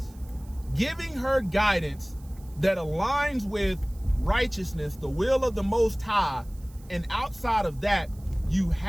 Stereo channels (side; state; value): right; noise; hiss, 26 dB below the sound